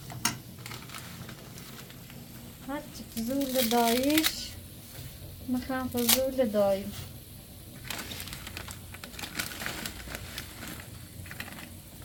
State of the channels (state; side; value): identical; both; correlation 1.00